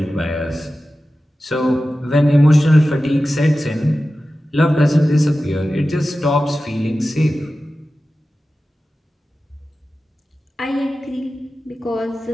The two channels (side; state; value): both; normal; correlation 0.94